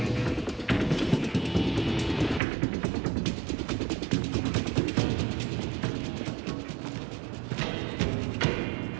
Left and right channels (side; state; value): left; drops out; at 2.4 s